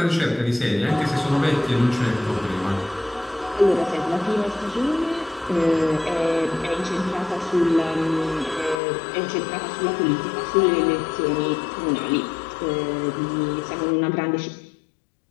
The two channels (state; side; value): drops out; right; at 8.8 s